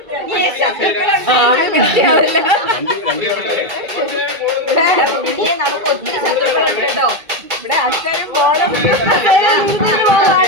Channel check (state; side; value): late; left; 2.3 ms